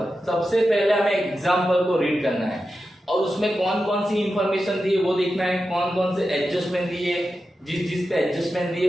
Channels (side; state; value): both; normal; correlation 0.91